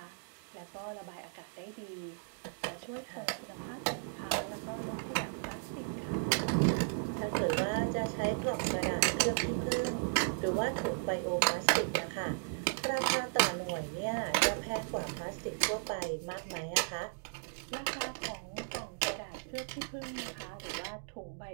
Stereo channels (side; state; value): left; silent; digital silence